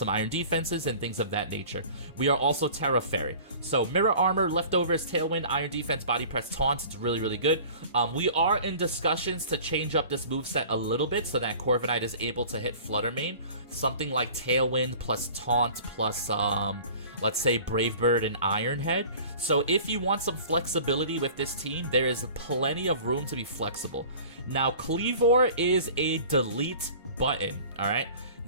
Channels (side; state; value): both; inverted; correlation -0.44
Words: iron defenses, and things of that nature. We are also Terra Fairy. So Mirror Armor, Leftovers, Tailwind, Iron Defense, Body Press, Taunt. It's really good. We are in discussions to change up this moveset a little bit so that Corviknight is able to hit Flutter Mane. Something like Tailwind plus Taunt plus, let's say, Brave Bird and Iron Head. So if you want some flexibility with this team, there is plenty of room to be flexible. Now, Kleavor is a delete button, alright?